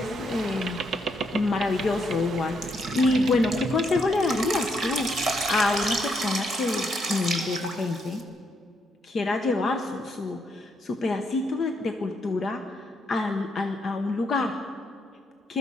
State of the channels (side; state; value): both; normal; correlation 0.76